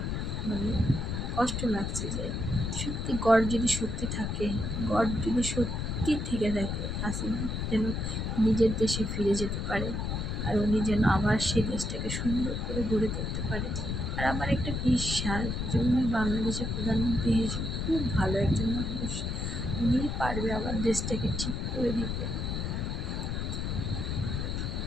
কষ্ট লাগছে যে সত্যি গড যদি সত্যি থেকে থাকে, হাসিনা যেন নিজের দেশে ফিরে যেতে পারে, আর উনি যেন আবার সেই দেশটাকে সুন্দর করে গড়ে তুলতে পারে। আর আমার একটা বিশ্বাস যে উনি বাংলাদেশের প্রধানমন্ত্রী হিসেবে খুব ভালো একজন মানুষ, উনি পারবে আবার দেশটাকে ঠিক করে দিতে।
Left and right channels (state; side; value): noise; left; rumble, 2 dB below the sound